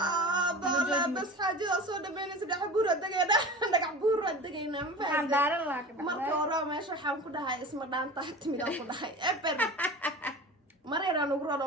بس حاجة صودا بين سدح بورة دقينا دقع بورة دقينا ما فهمت مركا ورا ما شو حام كده هاي اسمه دان تحت ميدا كده هاي إبر مرينا نقرأ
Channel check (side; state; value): both; normal; correlation 0.35